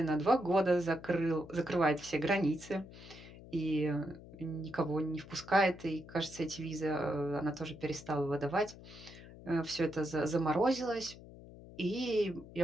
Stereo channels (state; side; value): noise; left; hum, 17 dB below the sound